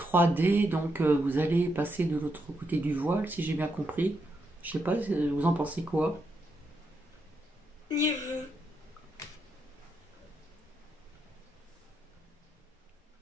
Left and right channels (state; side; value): normal; both; correlation 0.81